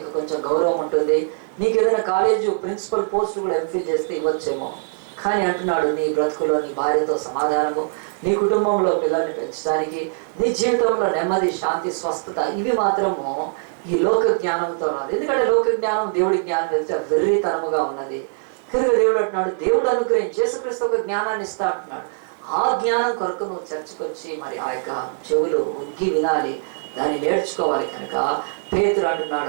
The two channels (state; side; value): silent; left; digital silence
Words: కొంచెం గౌరవం ఉంటుంది. నీకు ఏదైనా కాలేజు ప్రిన్సిపల్ పోస్ట్ కూడా ఎంఫిల్ చేస్తే ఇవ్వచ్చేమో, కానీ అంటున్నాడు, నీ బ్రతుకులో నీ భార్యతో సమాధానము, నీ కుటుంబంలో పిల్లల్ని పెంచడానికి, నీ జీవితంలో నెమ్మది, శాంతి, స్వస్థత, ఇవి మాత్రము ఈ లోక జ్ఞానంతో రాదు. ఎందుకంటే లోక జ్ఞానం దేవుడి జ్ఞానం వెళ్తే వెర్రితనముగా ఉన్నది కనుక దేవుడు అంటున్నాడు, దేవుడు అనుగ్రహించి యేసుక్రీస్తు ఒక జ్ఞానాన్ని ఇస్తా అంటున్నాడు. ఆ జ్ఞానం కొరకు నువ్వు చర్చకు వచ్చి మరి ఆ యొక్క చెవులు ఉగ్గి వినాలి, దాన్ని నేర్చుకోవాలి. కనుక పేతురు